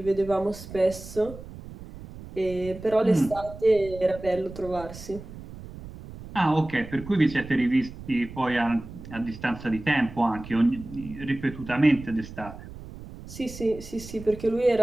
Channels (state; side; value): noise; right; rumble, 14 dB below the sound